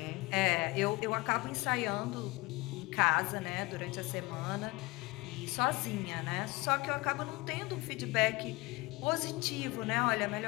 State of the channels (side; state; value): right; quieter; 22.6 dB